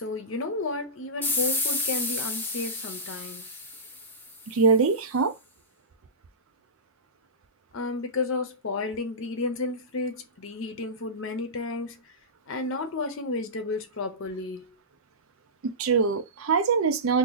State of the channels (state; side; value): normal; both; correlation -0.18